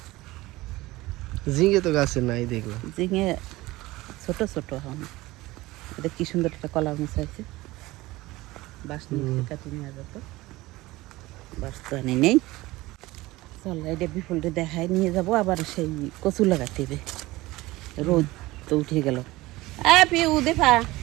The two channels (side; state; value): left; quieter; 19.3 dB